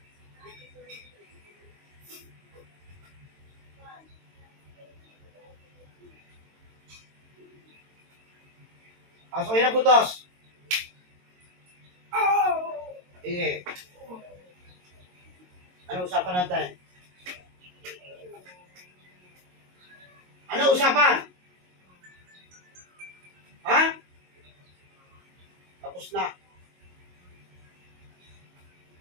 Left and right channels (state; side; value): late; left; 22 ms